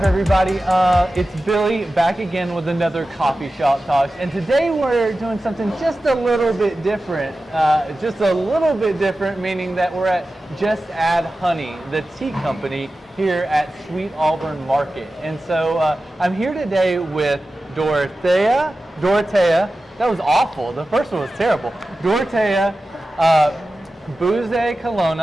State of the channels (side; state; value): both; normal; correlation 0.94